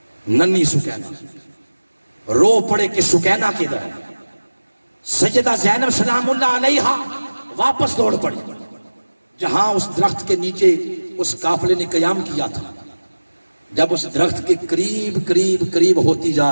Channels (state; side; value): inverted; both; correlation -1.00